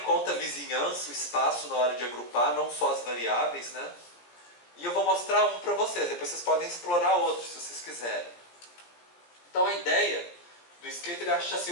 conta a vizinhança, o espaço na hora de agrupar, não só as variáveis, né? E eu vou mostrar um para vocês, depois vocês podem explorar outros se vocês quiserem. Então a ideia do Skater é achar assim,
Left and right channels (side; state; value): right; late; 17 ms